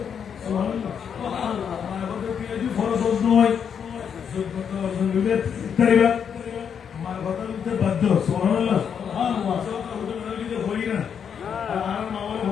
সুবহানাল্লাহ সুবহানাল্লাহ আমার বড় পিয়াজি ফরজ নয় সুবহানাল্লাহ অর্জন হইলে তাইবা আমার কথা বলতে বাধ্য সুবহানাল্লাহ সুবহানাল্লাহ সাথে হতে না হই না আর মাওলা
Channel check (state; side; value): quieter; right; 7.5 dB